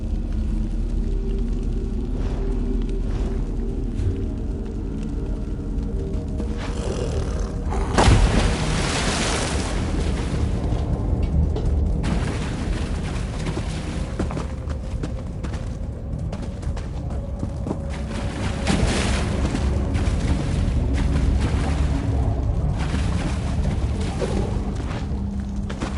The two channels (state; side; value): identical; both; correlation 1.00